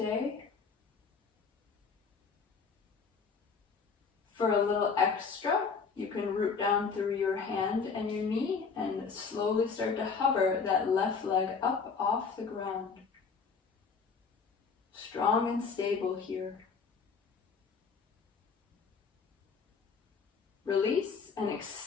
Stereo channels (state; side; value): quieter; right; 5.4 dB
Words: For a little extra, you can root down through your hand and your knee and slowly start to hover that left leg up off the ground. Strong and stable here. Release and